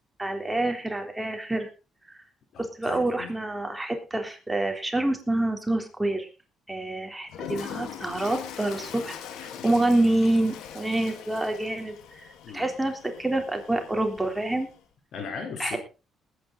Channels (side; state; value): both; normal; correlation 0.94